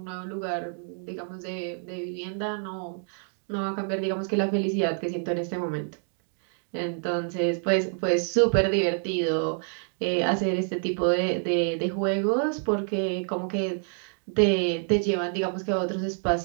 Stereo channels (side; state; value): left; silent; 55 dB below the other